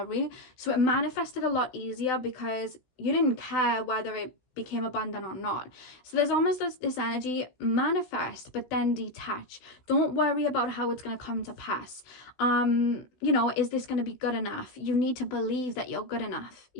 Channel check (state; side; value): late; right; 16 ms